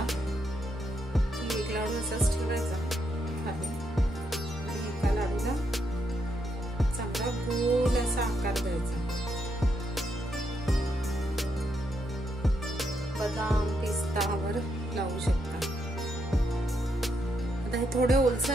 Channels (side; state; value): both; normal; correlation 0.79